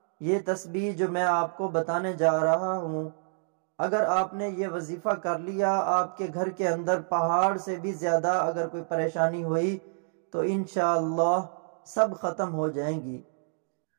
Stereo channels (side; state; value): left; silent; digital silence